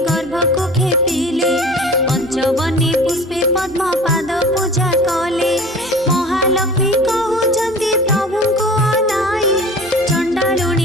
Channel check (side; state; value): both; normal; correlation 0.41